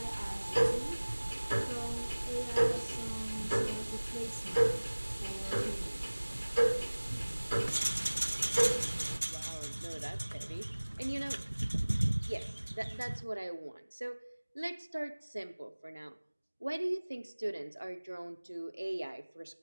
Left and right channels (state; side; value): inverted; both; correlation -1.00